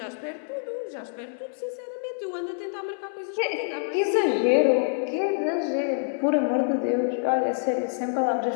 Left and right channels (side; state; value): right; silent; 61 dB below the other